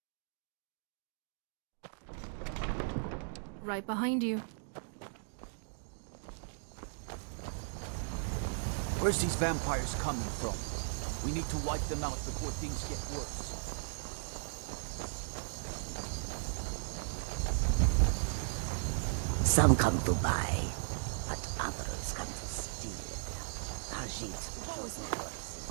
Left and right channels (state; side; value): silent; left; digital silence